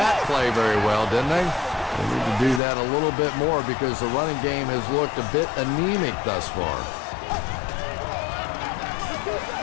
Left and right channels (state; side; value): drops out; right; at 2.6 s